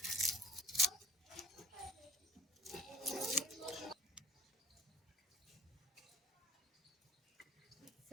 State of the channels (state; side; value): normal; both; correlation 0.46